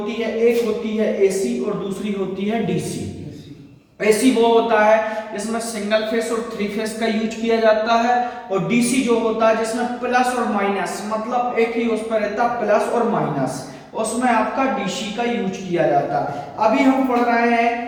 है, एक होती है एसी और दूसरी होती है डीसी। एसी वो होता है जिसमें सिंगल फेस और 3 फेस का यूज किया जाता है, और डीसी जो होता है जिसमें प्लस और माइनस, मतलब एक ही उस पर रहता प्लस और माइनस, उसमें आपका डीसी का यूज किया जाता है। अभी हम पढ़ रहे हैं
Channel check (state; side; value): identical; both; correlation 1.00